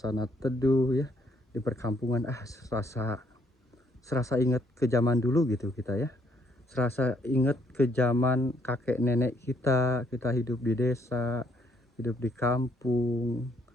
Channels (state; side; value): normal; both; correlation 0.69